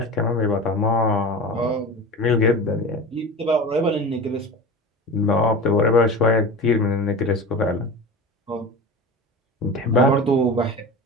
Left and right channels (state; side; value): normal; both; correlation 0.31